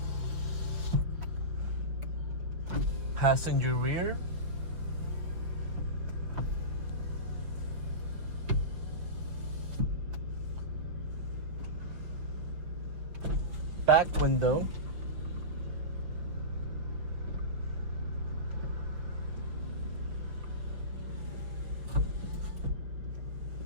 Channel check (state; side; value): late; left; 5.9 ms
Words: Passenger rear. Back window.